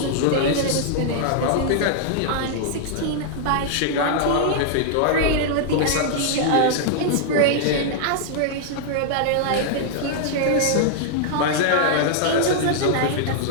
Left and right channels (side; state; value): both; different; correlation -0.01